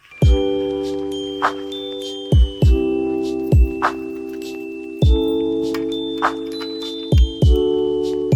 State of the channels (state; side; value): identical; both; correlation 1.00